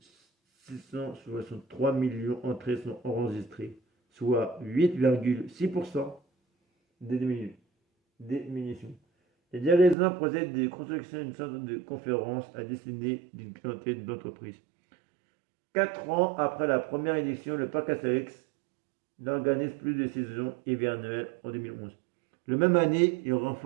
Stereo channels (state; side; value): drops out; left; at 10.0 s